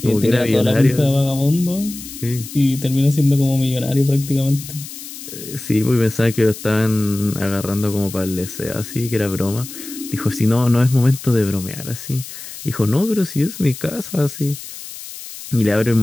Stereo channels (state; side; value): noise; left; hiss, 13 dB below the sound